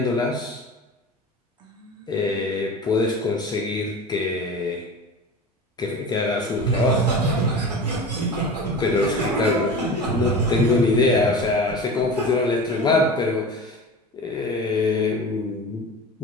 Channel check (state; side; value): normal; both; correlation 0.33